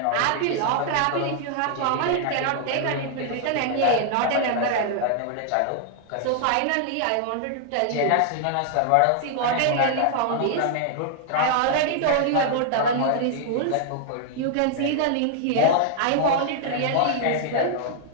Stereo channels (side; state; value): both; different; correlation 0.00